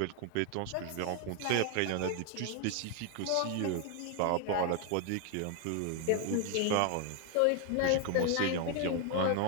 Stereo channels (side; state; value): both; different; correlation 0.00